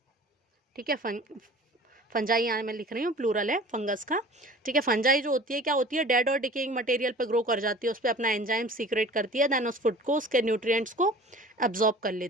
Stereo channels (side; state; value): both; normal; correlation 0.43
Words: ठीक है, फंजाई यहाँ मैं लिख रही हूँ, प्लूरल है फंगस का, ठीक है। फंजाई जो होती है क्या होती है, डेड और डिकेइंग मटेरियल पे ग्रो कर जाती है, उस पर अपना एंजाइम सीक्रेट करती है, देन उस फूड को, उसके न्यूट्रिएंट्स को एब्जॉर्ब कर